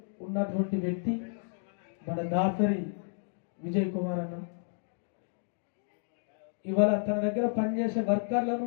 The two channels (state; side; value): silent; right; digital silence